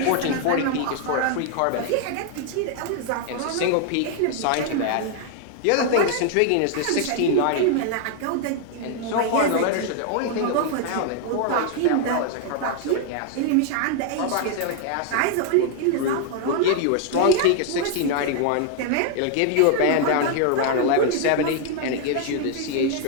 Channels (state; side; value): different; both; correlation 0.00